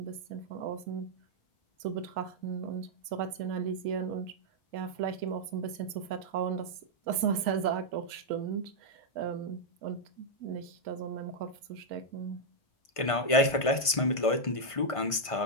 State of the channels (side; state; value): right; late; 1.5 ms